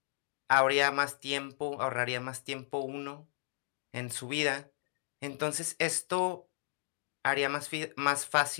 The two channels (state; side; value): silent; right; digital silence